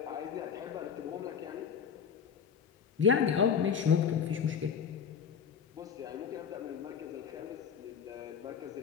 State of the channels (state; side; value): quieter; right; 7.0 dB